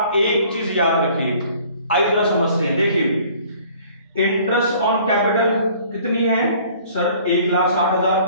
एक चीज याद रखिए। आइए जरा समझते हैं, देखिए इंटरेस्ट ऑन कैपिटल कितनी है सर 1,60,000,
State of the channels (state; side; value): inverted; both; correlation -0.54